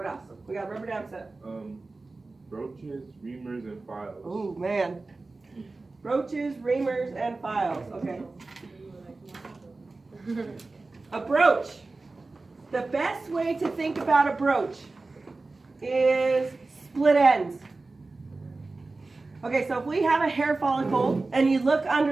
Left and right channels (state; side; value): quieter; left; 3.5 dB